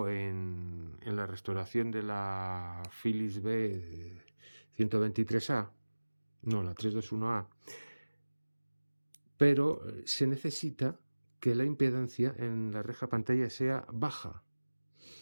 en la restauración de la Philips B 123A, no, la 321A, pero se necesita que la impedancia en la reja pantalla sea baja,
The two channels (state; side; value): inverted; both; correlation -1.00